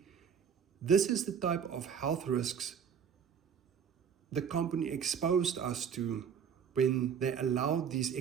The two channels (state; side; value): quieter; left; 7.3 dB